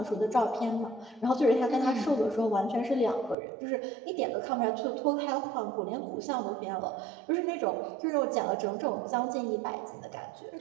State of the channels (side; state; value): left; drops out; at 3.4 s